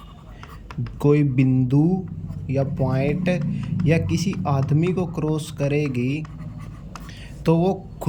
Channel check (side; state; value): both; identical; correlation 1.00